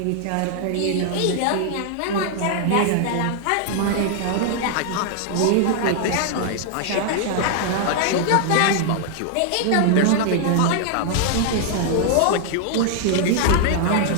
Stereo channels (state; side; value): different; both; correlation 0.00